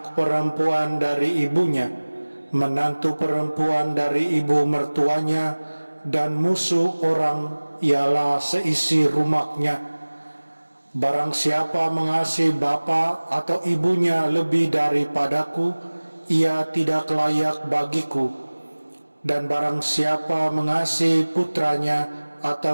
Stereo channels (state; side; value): inverted; both; correlation -1.00